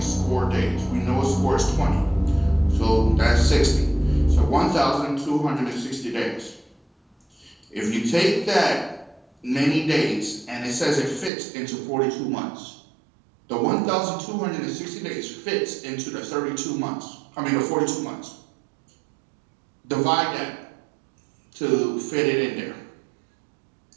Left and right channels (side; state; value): left; drops out; at 11.3 s